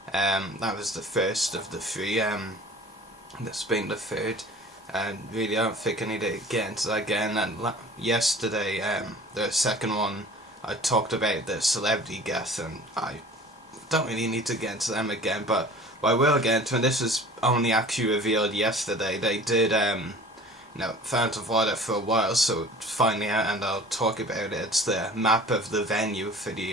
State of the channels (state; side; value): normal; both; correlation 0.44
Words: That was the first of the three, that's been the third, and really I don't think I need to get into that again. And yesterday, the second one, I talked about the celebrity guests, and I don't really need to get into them again, but what I will get into, and this was only actually revealed yesterday, they did, Phantom of Water for a while, so it's finally out, and I'll talk about it. It's the map of the venue for the